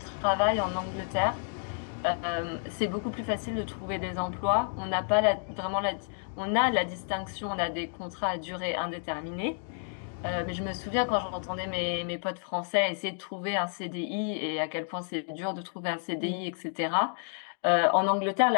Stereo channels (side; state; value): right; silent; 58 dB below the other